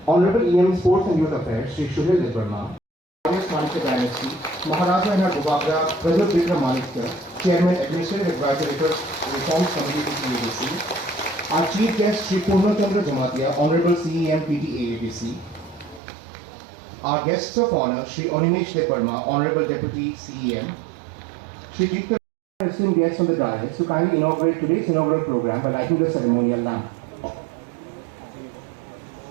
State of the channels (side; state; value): left; drops out; at 16.0 s